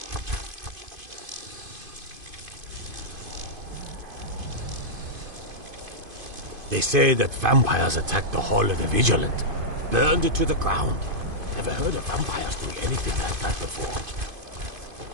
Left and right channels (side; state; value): left; late; 2.5 ms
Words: They say that vampires attacked the Hall of the Vigilant, burned it to the ground. Never heard of vampires doing anything like that before.